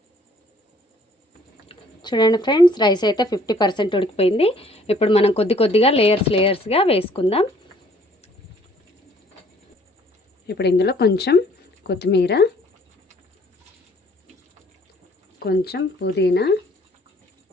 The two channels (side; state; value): both; normal; correlation 0.59